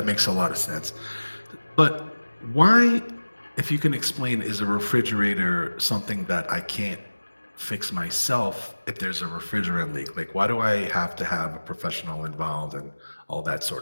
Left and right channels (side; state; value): both; inverted; correlation -1.00